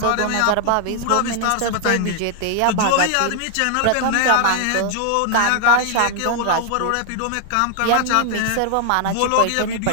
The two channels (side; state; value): both; different; correlation 0.00